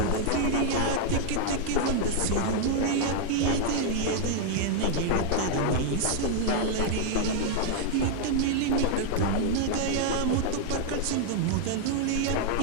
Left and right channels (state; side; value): different; both; correlation 0.00